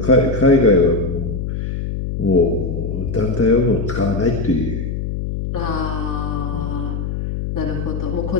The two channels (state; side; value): noise; left; hum, 3 dB below the sound